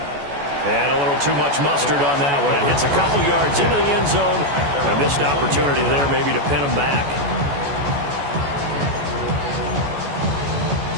And a little too much mustard on that one. It hits a couple yards into the end zone. A missed opportunity there maybe to pin him back.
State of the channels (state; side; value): late; left; 14 ms